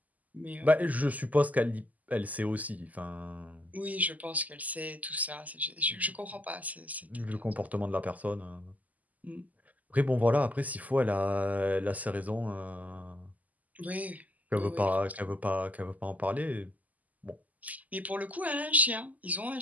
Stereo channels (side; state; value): left; late; 0.078 ms